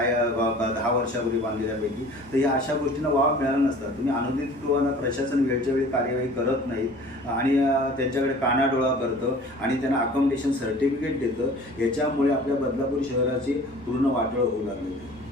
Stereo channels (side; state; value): both; normal; correlation 0.46